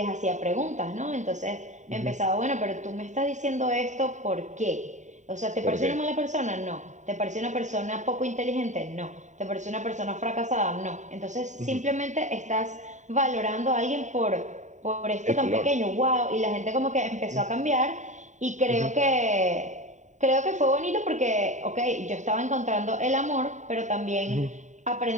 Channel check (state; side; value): late; left; 0.35 ms